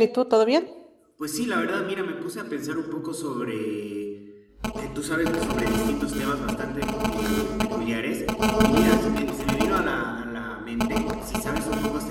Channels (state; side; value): identical; both; correlation 1.00